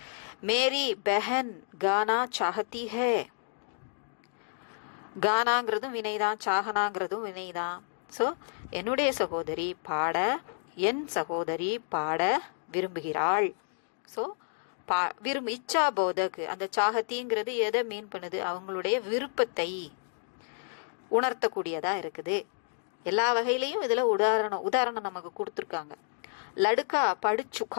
மேரி பெஹன் கானா சாஹத்தி ஹே, கானாங்கிறதும் வினைதான், சாகனாங்கிறதும் வினைதான். ஸோ என்னுடைய சகோதரி பாட, என் சகோதரி பாட விரும்புகிறாள். ஸோ இச்சா போதக்கு, அந்த சாகத்திங்கிறது எதை மீன் பண்ணுது, அவங்களுடைய விருப்பத்தை உணர்த்தக்கூடியதா இருக்குது. எல்லா வகையிலையும் இதுல உதாரணம் நமக்கு கொடுத்துருக்காங்க. லடுக்கா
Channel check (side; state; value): right; silent; digital silence